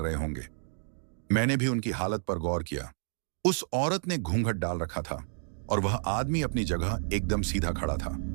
होंगे? मैंने भी उनकी हालत पर गौर किया। उस औरत ने घूंघट डाल रखा था और वह आदमी अपनी जगह एकदम सीधा खड़ा था।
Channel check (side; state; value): left; silent; digital silence